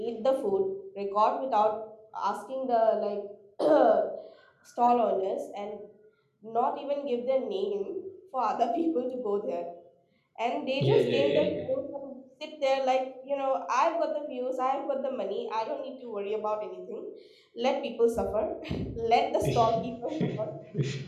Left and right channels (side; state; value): both; identical; correlation 1.00